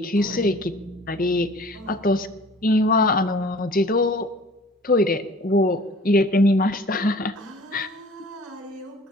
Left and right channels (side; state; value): both; normal; correlation 0.48